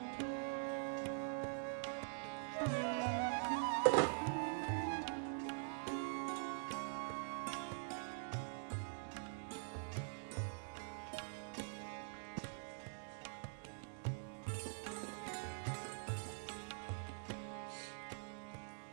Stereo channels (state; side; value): silent; left; digital silence